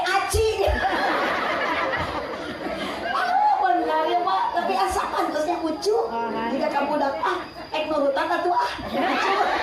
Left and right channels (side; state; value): both; identical; correlation 1.00